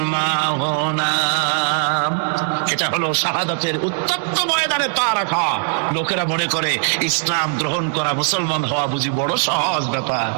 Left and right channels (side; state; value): left; silent; digital silence